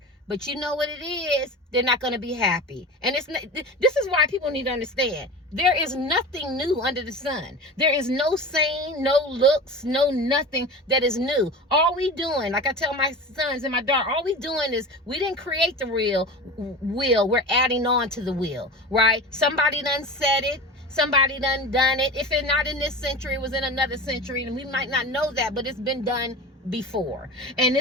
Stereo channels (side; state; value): both; normal; correlation 0.32